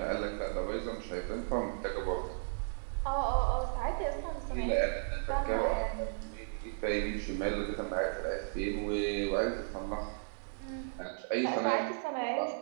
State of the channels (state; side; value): silent; left; digital silence